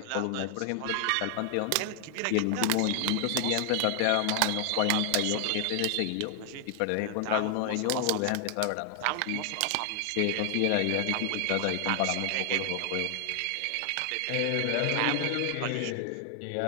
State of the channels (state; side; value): different; both; correlation 0.00